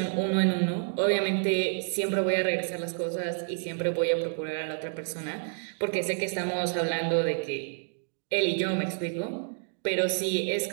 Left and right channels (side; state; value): left; silent; digital silence